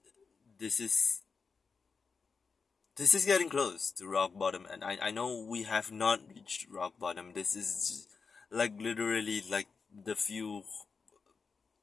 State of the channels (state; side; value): quieter; right; 5.1 dB